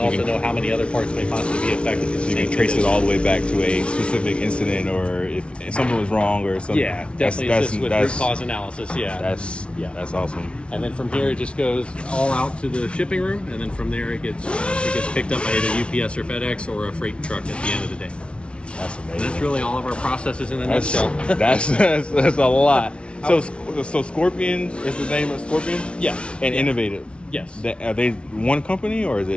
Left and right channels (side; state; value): right; late; 0.059 ms